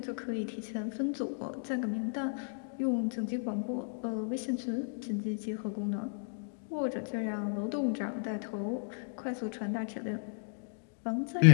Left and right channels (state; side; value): silent; right; digital silence